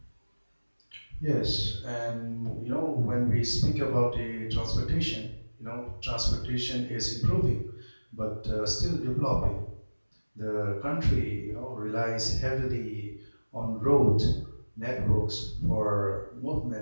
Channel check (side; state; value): both; inverted; correlation -1.00